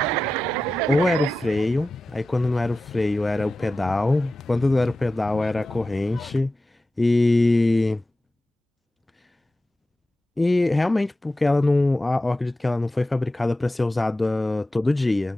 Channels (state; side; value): normal; both; correlation 0.94